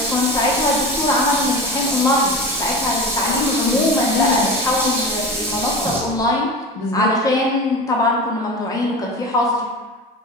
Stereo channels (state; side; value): normal; both; correlation 0.29